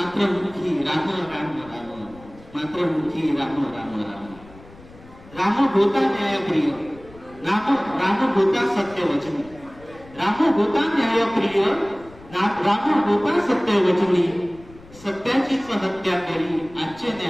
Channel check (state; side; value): noise; left; rumble, 22 dB below the sound